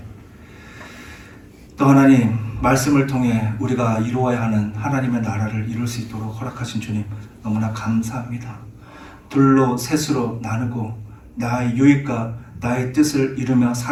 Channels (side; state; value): both; identical; correlation 1.00